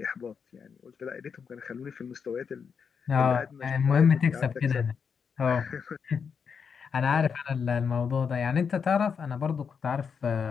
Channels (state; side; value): quieter; right; 6.4 dB